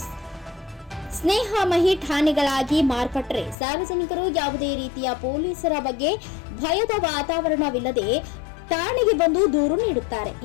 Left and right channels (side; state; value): right; drops out; at 3.6 s